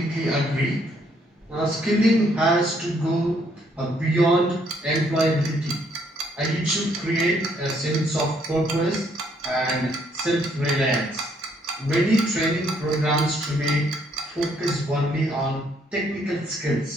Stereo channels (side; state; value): both; normal; correlation 0.68